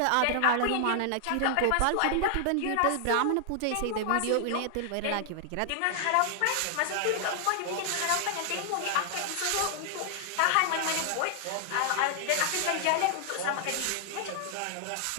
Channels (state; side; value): different; both; correlation 0.00